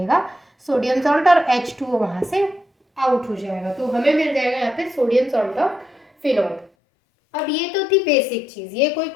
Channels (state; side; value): drops out; right; at 6.7 s